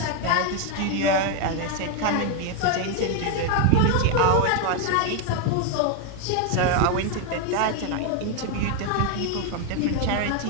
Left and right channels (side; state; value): both; different; correlation 0.01